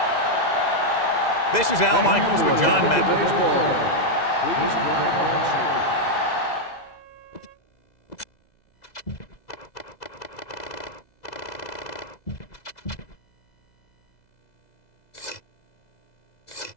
This is Al Michaels with John Mendel. Please welcome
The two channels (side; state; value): right; late; 2.0 ms